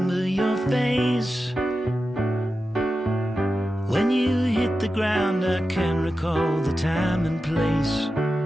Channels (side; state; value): both; normal; correlation 0.92